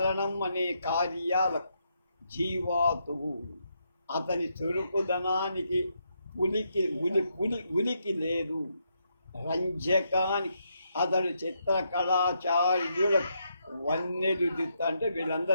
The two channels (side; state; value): both; inverted; correlation -0.79